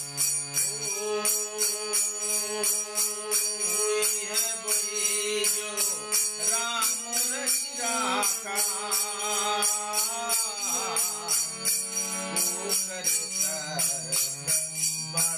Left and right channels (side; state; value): both; identical; correlation 1.00